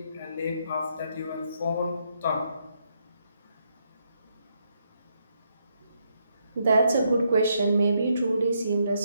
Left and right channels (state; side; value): inverted; both; correlation -0.77